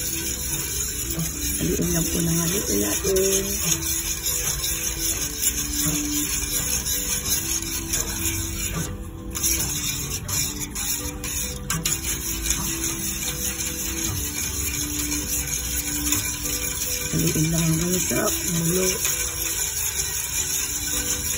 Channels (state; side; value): identical; both; correlation 1.00